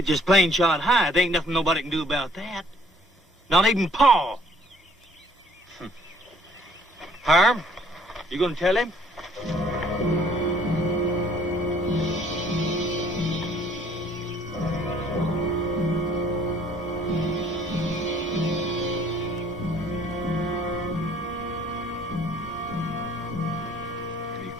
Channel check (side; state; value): both; normal; correlation 0.59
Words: just plain shot high. There ain't nothing nobody can do about that. Not even Pa. Harm, you gonna tell him?